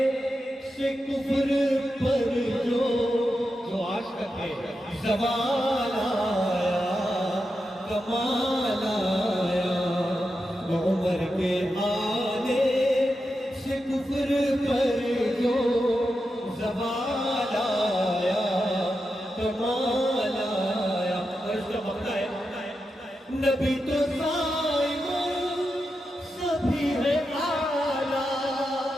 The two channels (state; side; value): normal; both; correlation 0.88